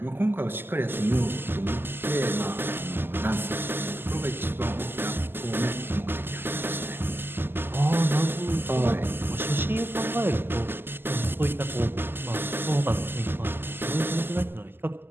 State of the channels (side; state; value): left; late; 0.10 ms